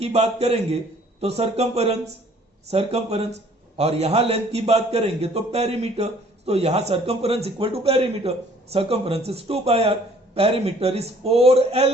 बात करेंगे तो सर्कमफरेंस और यहां लेंथ की बात करेंगे तो पेरीमीटर. तो यहां circumference equal to perimeter. Circumference is 2 pi r. Perimeter is 4L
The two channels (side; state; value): both; normal; correlation 0.57